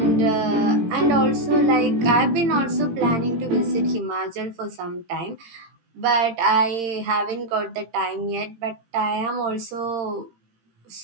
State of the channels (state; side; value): late; left; 18 ms